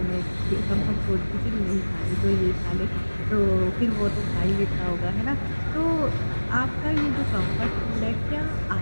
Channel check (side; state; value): both; inverted; correlation -1.00